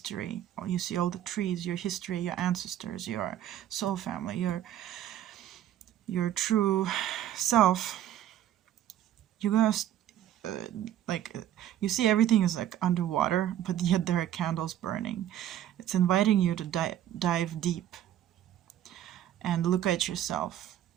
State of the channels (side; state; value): left; quieter; 11.6 dB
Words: or you see all the trees, your history, your ancestors, your soul family, your true self, you're gonna you see everything is like underwater, but yet there are candles burning. It's inviting you to dive deep and look at yourself,